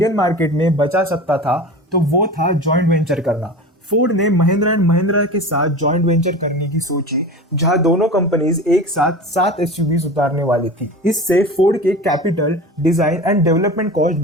मार्केट में बचा सकता था तो वो था जॉइंट वेंचर करना। फोर्ड ने महिंद्रा एंड महिंद्रा के साथ जॉइंट वेंचर करने की सोची, जहां दोनों कंपनीज एक साथ 7 एसयूवीज उतारने वाली थी। इससे फोर्ड के capital, design and development cost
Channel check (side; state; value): both; normal; correlation 0.33